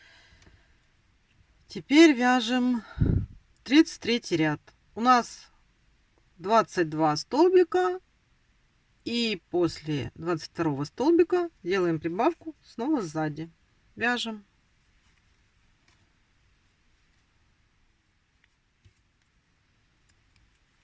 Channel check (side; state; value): both; identical; correlation 1.00